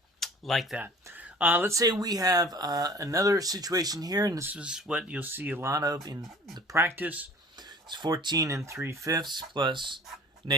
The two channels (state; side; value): normal; both; correlation 0.46